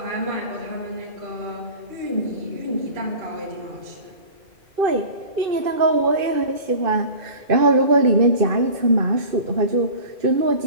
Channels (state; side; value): late; left; 2.5 ms